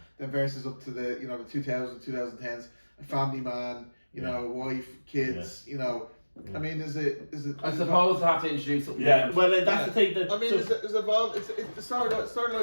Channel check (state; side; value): inverted; both; correlation -1.00